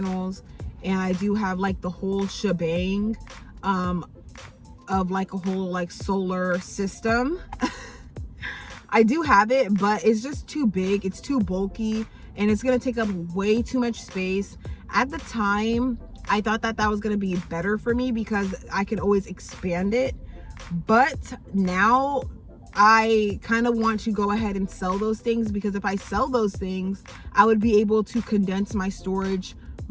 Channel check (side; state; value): both; identical; correlation 1.00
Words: and I do have like the whole shebang of like a whole like solar system. I do have it, but it's just too big, it's too bulky, and it's going to take up way too much space. At the time, I thought that that was going to be better for me because I could always expand it. But now I kind of want to go ahead and sell those things, because if I sell those things, I would be able to condense my storage